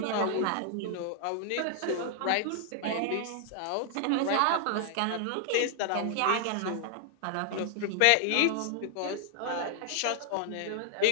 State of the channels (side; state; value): both; different; correlation 0.00